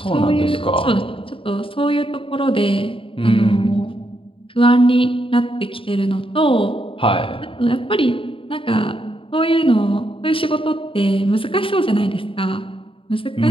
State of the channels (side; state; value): right; late; 0.26 ms